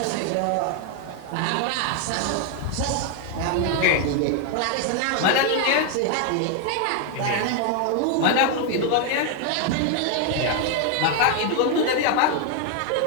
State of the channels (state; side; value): different; both; correlation 0.00